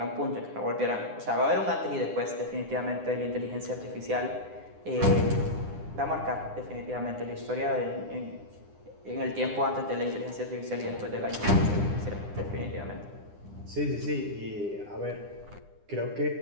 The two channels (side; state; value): left; late; 9.9 ms